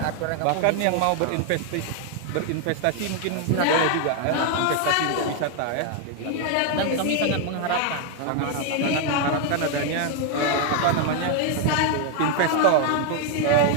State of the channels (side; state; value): both; different; correlation 0.00